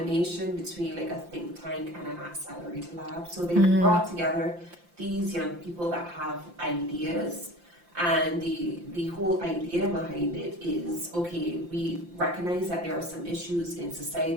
between like a think tank and an accelerator lab. So they brought together these young people that have ideas, and the whole idea behind it is, okay, we recognize that there are some issues in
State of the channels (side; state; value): left; late; 5.8 ms